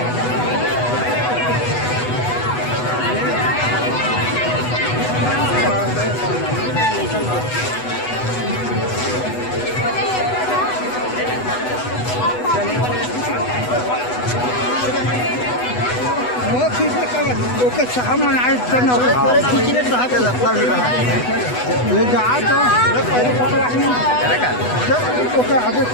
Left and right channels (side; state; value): right; late; 8.1 ms